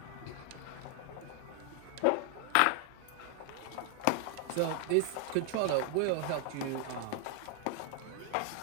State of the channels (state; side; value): different; both; correlation 0.00